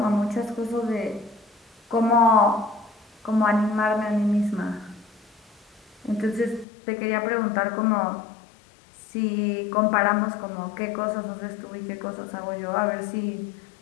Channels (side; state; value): right; drops out; at 6.7 s